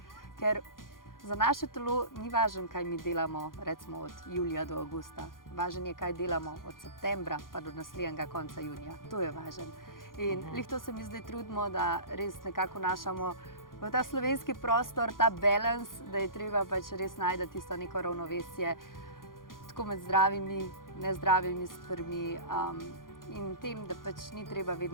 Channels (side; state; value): right; late; 0.90 ms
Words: Ker za naše telo ni važno, kaj mi delamo, recimo od julija do avgusta. Važno je, kaj delamo od septembra pa do naslednjega konca junija. To je važno. In lih to se mi zdaj trudimo, da res nekako našamo v ta slovenski prostor, ta balans, da je treba pač res najti tisto neko ravnovesje tako med zdravimi, nezdravimi stvarmi in tem, da pač ni treba